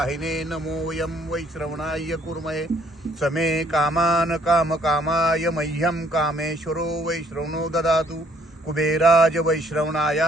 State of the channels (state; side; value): normal; both; correlation 0.63